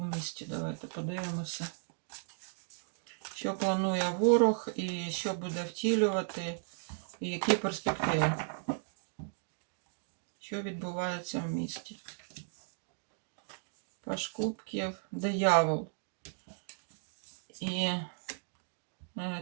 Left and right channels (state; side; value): silent; left; digital silence